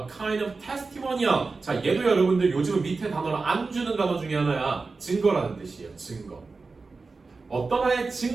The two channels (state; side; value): quieter; left; 4.1 dB